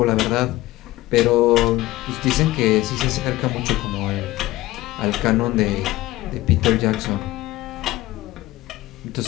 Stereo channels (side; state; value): right; quieter; 17.4 dB